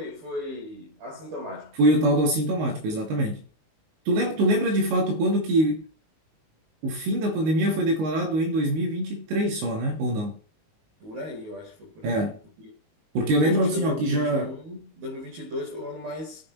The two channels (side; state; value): left; late; 19 ms